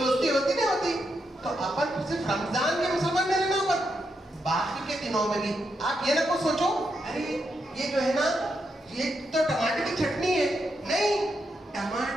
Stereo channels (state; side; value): normal; both; correlation 0.83